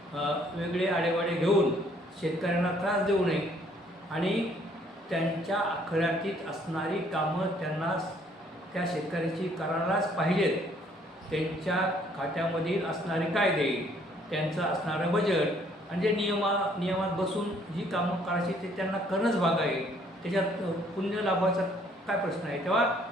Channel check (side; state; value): both; normal; correlation 0.63